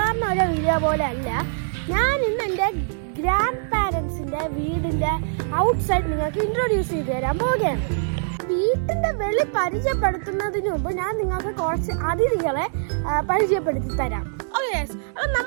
ഒരു വീഡിയോ പോലെ അല്ല, ഞാൻ ഇന്ന് എൻ്റെ ഗ്രാൻഡ് പാരൻസിൻ്റെ വീടിൻ്റെ ഔട്ട്സൈഡ് നിങ്ങൾക്ക് ഇൻട്രൊഡ്യൂസ് ചെയ്ത് തരാൻ പോവുകയാണ്. വീട്ടിൻ്റെ വെളി പരിചയപ്പെടുത്തുന്നതിന് മുമ്പ് ഞാൻ നിങ്ങൾക്ക് കുറച്ച് അതിഥികളെ പരിചയപ്പെടുത്തി തരാം. ഓക്കെ, അപ്പം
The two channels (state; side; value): silent; left; digital silence